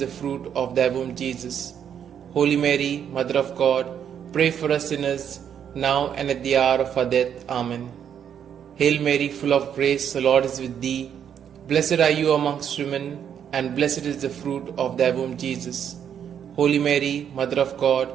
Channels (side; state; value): left; quieter; 8.7 dB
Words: fruit of thy womb, Jesus. Holy Mary, Mother of God, pray for us sinners, now and at the hour of our death. Amen. Hail Mary, full of grace, the Lord is with thee. Blessed are you amongst women, and blessed is the fruit of thy womb, Jesus. Holy Mary, Mother of God,